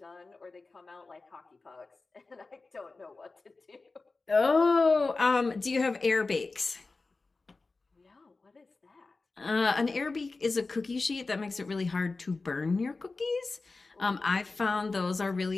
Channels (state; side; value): quieter; right; 3.7 dB